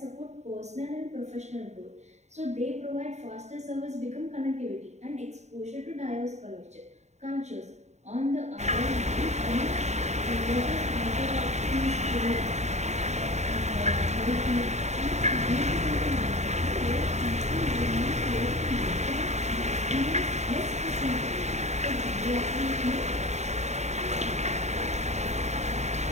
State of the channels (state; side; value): late; left; 0.33 ms